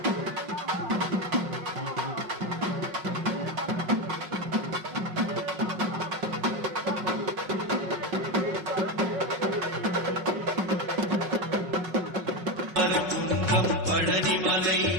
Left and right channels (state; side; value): late; left; 5.5 ms